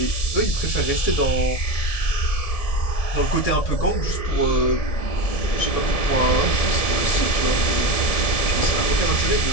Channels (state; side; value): late; right; 1.7 ms